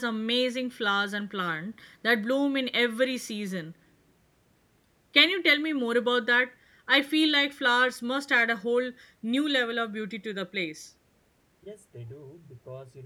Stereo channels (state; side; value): identical; both; correlation 1.00